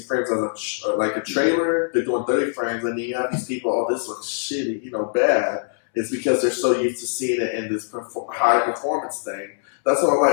frames as like a trailer. They're doing 30 frames, and then you have these people. Oh, this looks shitty, bad. It's because they're so used to seeing it in this high performance thing. That's what I'm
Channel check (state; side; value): silent; right; 64 dB below the other